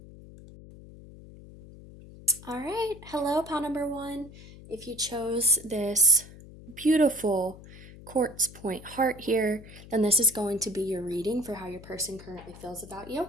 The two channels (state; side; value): noise; left; hum, 18 dB below the sound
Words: All right, hello, pile number 1. If you chose this beautiful quartz point heart here, then this is going to be your reading for how your person currently feels about you.